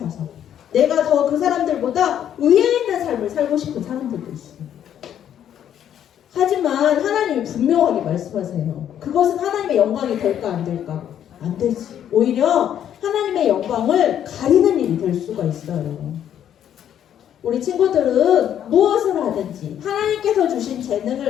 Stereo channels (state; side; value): quieter; right; 10.0 dB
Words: 내가 더 그 사람들보다 위에 있는 삶을 살고 싶은 사람들도 있어요. 하지만 하나님이 분명하게 말씀하세요. 그것은 하나님의 영광이 될까 안 될까? 안 되지. 오히려 하나님의 영광을 가리는 일이 될 수가 있어요. 우리 친구들은 무엇을 하든지 하나님께서 주신